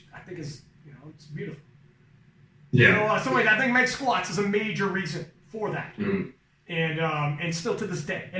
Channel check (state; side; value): identical; both; correlation 1.00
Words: I think is, it's beautiful. Yeah. So I think Meg Squats is a major reason for that. Mm-hmm. And still to this day.